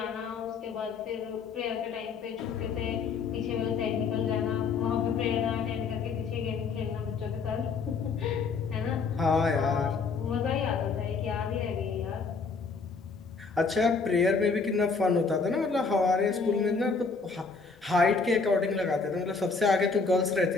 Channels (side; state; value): right; quieter; 4.7 dB